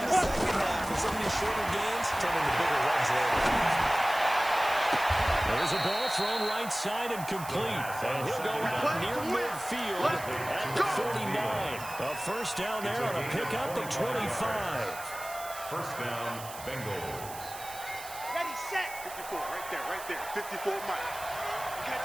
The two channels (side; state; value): right; noise; hiss, 13 dB below the sound